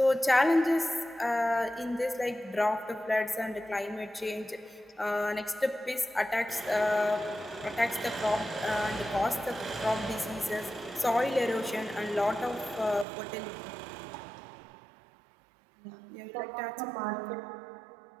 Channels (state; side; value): drops out; left; at 13.1 s